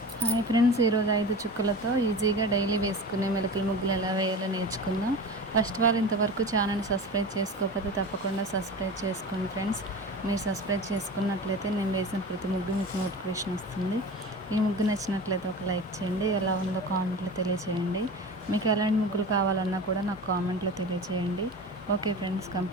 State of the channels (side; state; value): both; normal; correlation 0.32